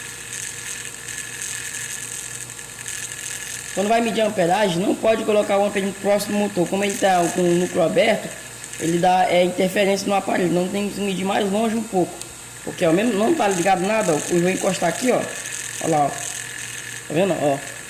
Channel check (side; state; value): both; identical; correlation 1.00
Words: Quando vai medir a amperagem, não pode colocar o amperímetro muito próximo do motor. Como ele está com o núcleo aberto, ele dá interferência no aparelho. Não tem que medir mais longe um pouco. Porque ao menos não está ligado nada. Ó. Eu vou encostar aqui, ó. Olha lá, ó. Tá vendo? Ó.